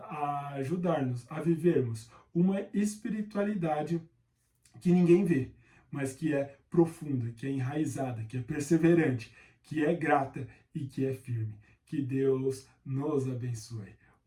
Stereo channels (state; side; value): identical; both; correlation 1.00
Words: ajudar-nos a vivermos uma espiritualidade que ninguém vê, mas que é profunda, que é enraizada, que é perseverante, que é grata e que é firme. Que Deus nos abençoe.